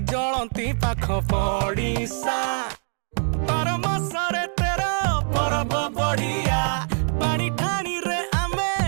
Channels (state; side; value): silent; left; 55 dB below the other